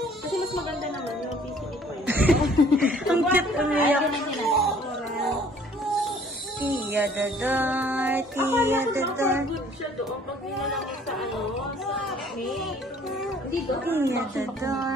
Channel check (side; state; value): both; normal; correlation 0.56